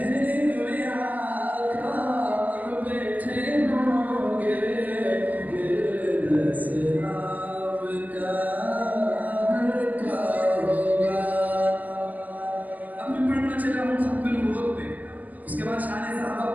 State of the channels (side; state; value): left; late; 0.079 ms